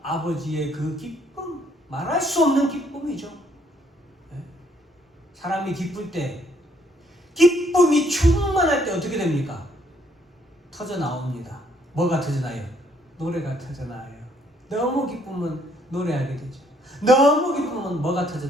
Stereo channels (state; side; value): normal; both; correlation 0.67